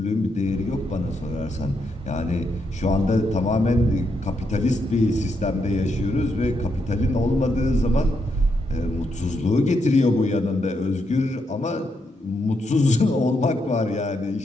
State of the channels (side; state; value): both; normal; correlation 0.80